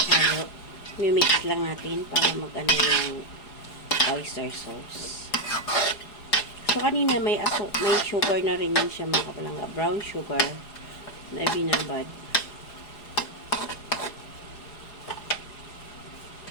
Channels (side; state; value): right; late; 4.8 ms